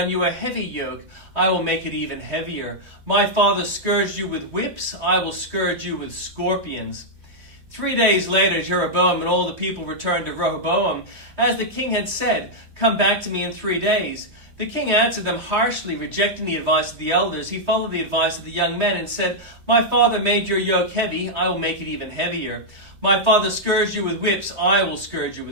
you a heavy yoke. I will make it even heavier. My father scourged you with whips. I will scourge you with scorpions." 3 days later, Jeroboam and all the people returned to Rehoboam. As the king had said, "Come back to me in 3 days." The king answered them harshly, rejecting the advice of the elders. He followed the advice of the young men and said, "My father made your yoke heavy. I will make it even heavier. My father scourged you with whips. I will scourge you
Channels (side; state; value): left; late; 3.1 ms